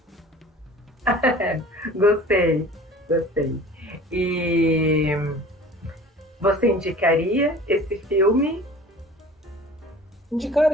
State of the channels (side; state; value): both; normal; correlation 0.44